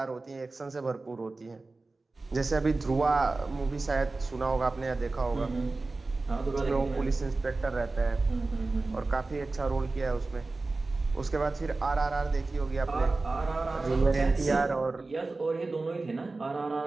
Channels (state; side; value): quieter; left; 3.4 dB